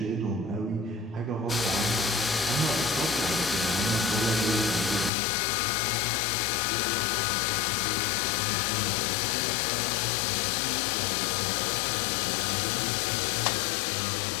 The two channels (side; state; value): right; drops out; at 5.1 s